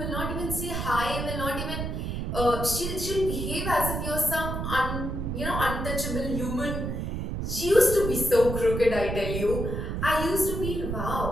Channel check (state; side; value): noise; right; rumble, 3 dB below the sound